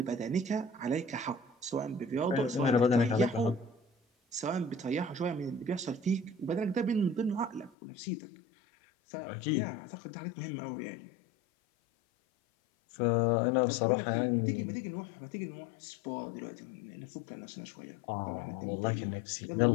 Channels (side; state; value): right; drops out; at 7.8 s